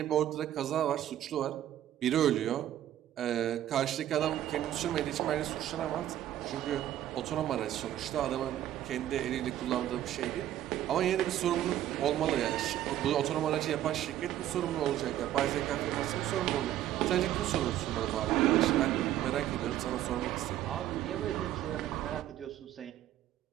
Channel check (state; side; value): quieter; left; 12.3 dB